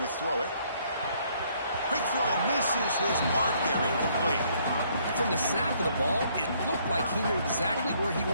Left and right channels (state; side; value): inverted; both; correlation -0.66